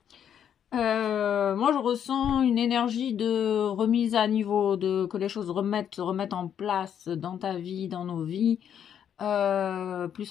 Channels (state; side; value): quieter; right; 9.0 dB